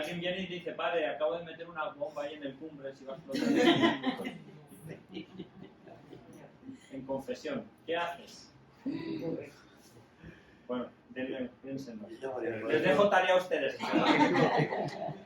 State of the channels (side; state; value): both; identical; correlation 1.00